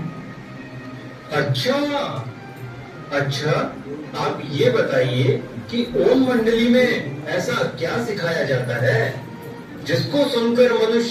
अच्छा अच्छा, आप ये बताइए कि ओम मंडली में ऐसा क्या सिखाया जाता है जिसको सुनकर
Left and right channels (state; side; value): identical; both; correlation 1.00